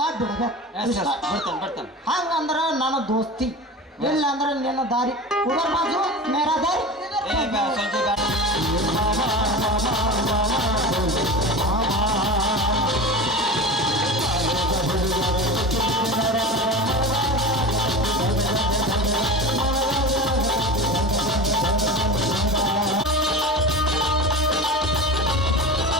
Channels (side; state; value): both; normal; correlation 0.30